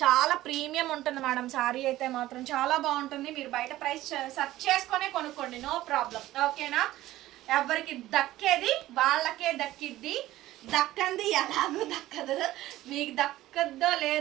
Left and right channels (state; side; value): quieter; left; 15.5 dB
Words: చాలా ప్రీమియం ఉంటుంది మేడం. శారీ అయితే మాత్రం చాలా బాగుంటుంది. మీరు బయట ప్రైస్ సెర్చ్ చేసుకునే కొనుక్కోండి, నో ప్రాబ్లం. ఓకేనా? ఎవరికి దక్కేది వాళ్ళకే దక్కిద్ది, దక్కంది ఎలాగో దక్కదు. మీకు దక్కద్దో